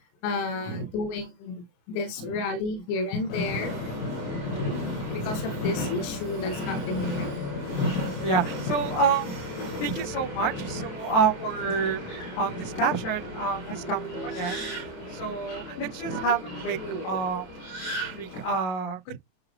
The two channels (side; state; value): right; late; 28 ms